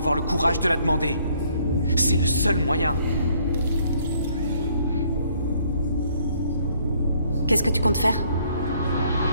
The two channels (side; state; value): both; inverted; correlation -0.65